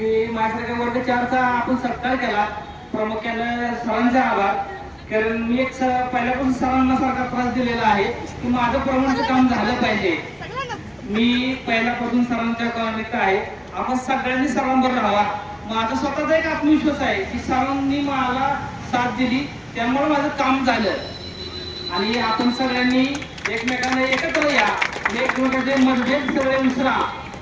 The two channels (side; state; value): both; identical; correlation 1.00